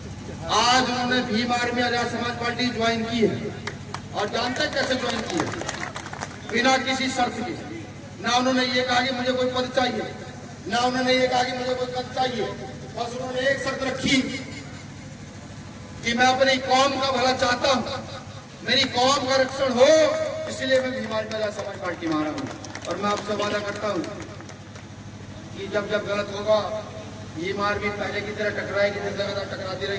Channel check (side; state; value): both; identical; correlation 1.00